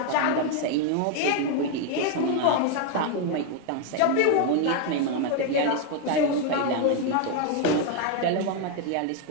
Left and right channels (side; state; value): both; different; correlation 0.01